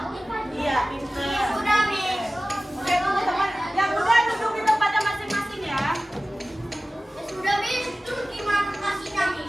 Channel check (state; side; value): normal; both; correlation 0.96